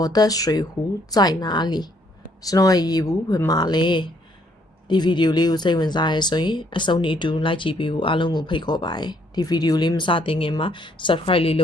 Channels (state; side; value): normal; both; correlation 0.68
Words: 的水壶在哪里ကျွန်တော်ရဲ့ရေဘူးဘယ်မှာလဲဒီဗီဒီယိုလေးကိုစိတ်ဝင်စားရဲဆိုရင်အဆုံးထိအတူလိုက်ကြည့်ပေးဖို့အားလုံးကိုဖိတ်ခေါ်ပါတယ်ဒီဗီဒီယိုလေးမစတင်ခင်မှာ Subscribe လေးလု